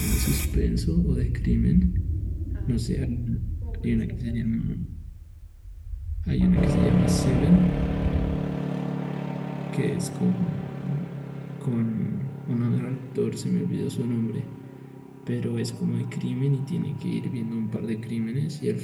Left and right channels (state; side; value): identical; both; correlation 1.00